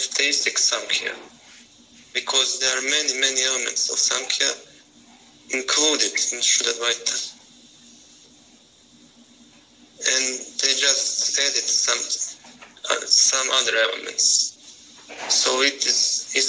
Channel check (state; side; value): identical; both; correlation 1.00